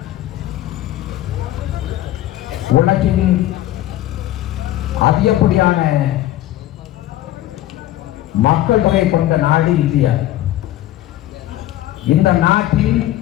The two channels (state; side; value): quieter; right; 14.2 dB